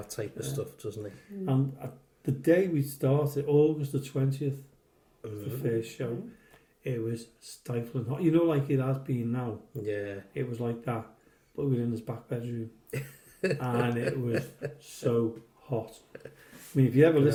type of stuff, doesn't he? And the day we started, August the 20th, the first show, it was stifling hot. You know, like it has been now. Yeah. It was like that, but we were in his back bedroom, and it was so hot. I mean, if you ever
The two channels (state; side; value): identical; both; correlation 1.00